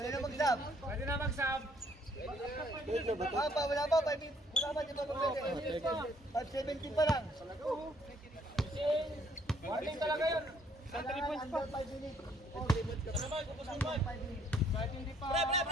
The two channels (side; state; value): both; normal; correlation 0.65